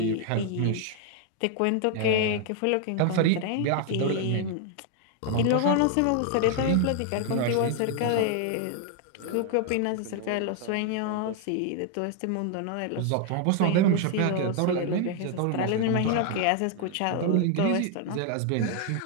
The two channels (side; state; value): both; different; correlation 0.00